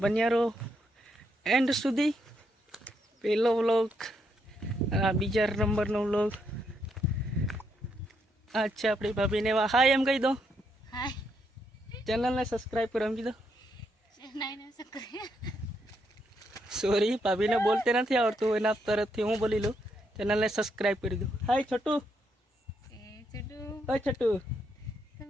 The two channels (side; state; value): both; normal; correlation 0.77